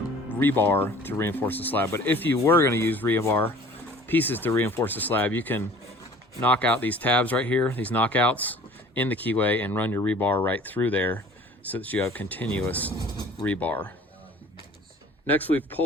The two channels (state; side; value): normal; both; correlation 0.48